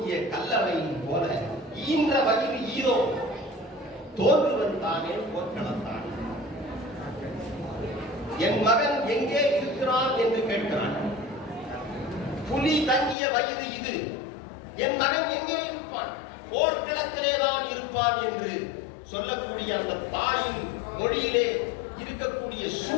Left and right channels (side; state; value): right; drops out; at 13.2 s